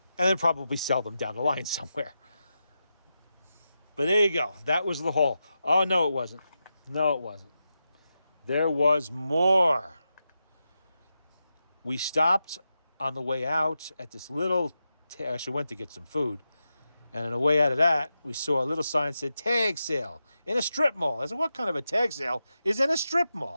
And then probably sell them down the line somewhere. But there you go. That was the haul. Oh, no, it wasn't. No, it wasn't. There was more. We stopped on the way out at this little, actually went to get some food. And on the way out of that, we saw a little sign that said tag sale in a strip mall. I said, what kind of a tag sale is in a strip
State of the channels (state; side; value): inverted; both; correlation -0.89